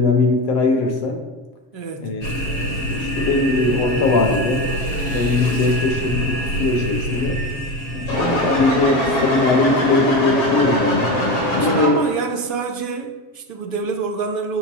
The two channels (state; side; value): late; right; 7.0 ms